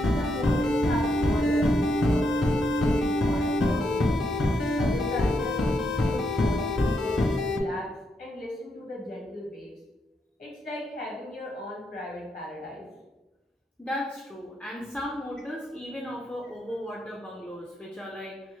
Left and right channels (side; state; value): both; normal; correlation 0.80